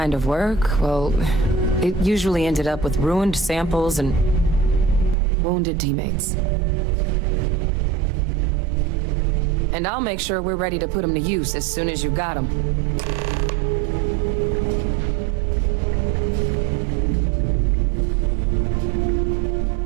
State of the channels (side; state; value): left; drops out; at 5.2 s